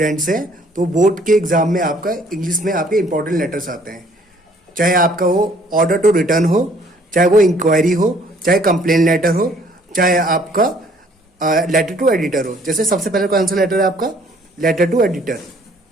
हैं तो बोर्ड के एग्जाम में आपका इंग्लिश में आपके इंपॉर्टेंट लेटर्स आते हैं, चाहे आपका वो ऑर्डर टू रिटर्न हो, चाहे वो इंक्वायरी हो, चाहे कंप्लेन लेटर हो, चाहे आपका लेटर टू एडिटर हो। जैसे सबसे पहले कौन सा लेटर है आपका, लेटर टू एडिटर।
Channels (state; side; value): normal; both; correlation 0.60